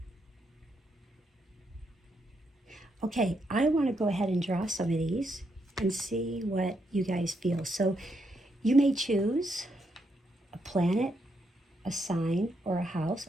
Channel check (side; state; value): both; normal; correlation 0.79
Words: Okay, I want to go ahead and draw some of these and see what you guys feel. So you may choose a planet, a sign, or a house,